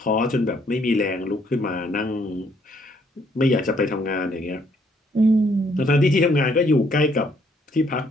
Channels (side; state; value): both; normal; correlation 0.68